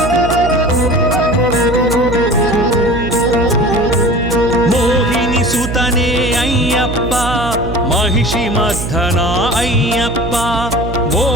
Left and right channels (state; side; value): noise; right; hum, 6 dB below the sound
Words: మోహిని సుతనే అయ్యప్ప మహిషి మర్ధన అయ్యప్ప